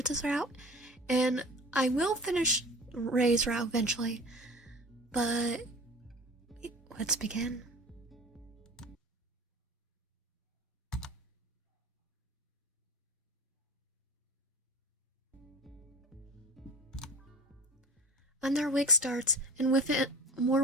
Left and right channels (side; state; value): both; normal; correlation 0.38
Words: route, and I will finish Ray's route eventually. But let's begin. Another week starts, and with it, more